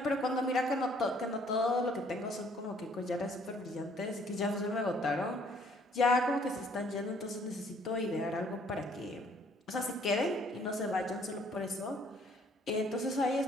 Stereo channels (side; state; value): both; normal; correlation 0.62